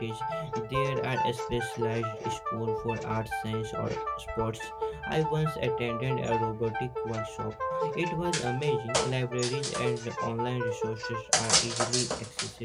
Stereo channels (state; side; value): identical; both; correlation 1.00